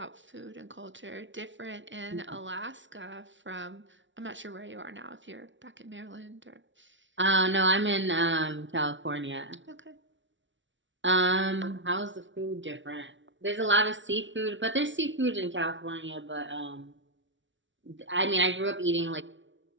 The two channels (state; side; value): late; left; 0.55 ms